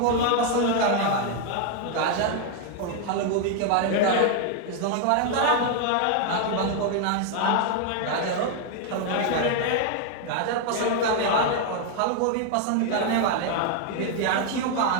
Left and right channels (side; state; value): both; different; correlation 0.01